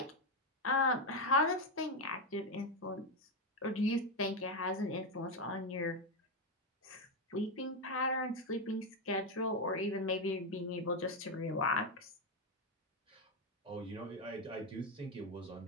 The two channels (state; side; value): normal; both; correlation 0.07